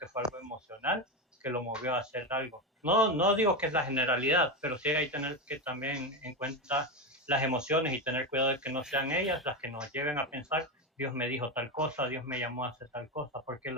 fue algo emocional que lo movió a hacer algo. No digo que es la generalidad, pero sí hay que tener que también en cuenta las emociones y tener cuidado de que no sean ellas las que nos lleven a pensar, Dios me dijo tal cosa, Dios me llamó a hacer tal cosa, porque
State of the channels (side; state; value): both; normal; correlation 0.14